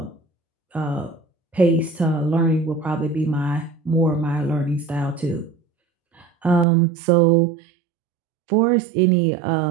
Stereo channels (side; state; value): left; drops out; at 6.7 s